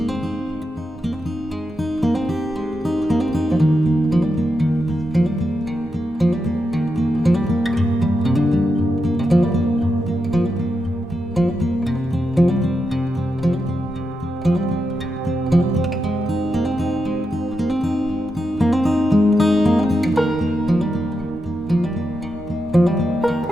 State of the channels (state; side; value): normal; both; correlation 0.86